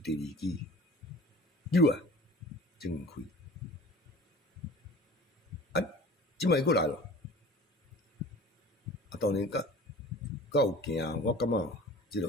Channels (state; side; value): normal; both; correlation 0.42